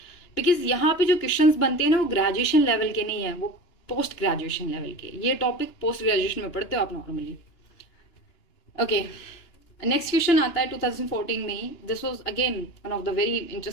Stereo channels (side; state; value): right; late; 2.9 ms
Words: बिकॉज यहाँ पे जो क्वेश्चंस बनते हैं ना वो ग्रेजुएशन लेवल के नहीं है, वो पोस्ट ग्रेजुएशन लेवल के। ये टॉपिक पोस्ट ग्रेजुएशन में पढ़ते हो आप नॉर्मली। ओके, नेक्स्ट क्वेश्चन आता है 2014 में ही। This was again one of the very